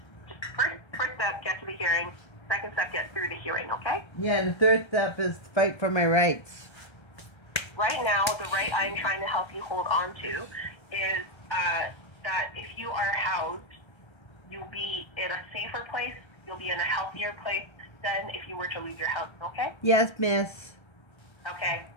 just first step, get to the hearing. Second step, get through the hearing, okay? Yeah, and the third step is fight for my rights. Right now, the right I'm trying to help you hold on to is that if you are housed, you'll be in a safer place, you'll be in a healthier place than if you were to lose your house, okay? Yes, miss. Okay,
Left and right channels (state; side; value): late; right; 1.3 ms